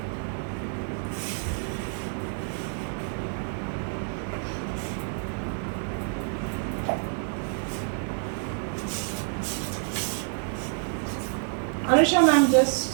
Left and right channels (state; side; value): silent; left; 55 dB below the other